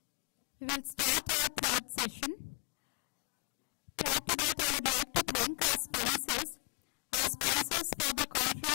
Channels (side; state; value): right; quieter; 32.1 dB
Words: We will start our third session. Prior to that, I would like to thank our sponsors. Our sponsors for the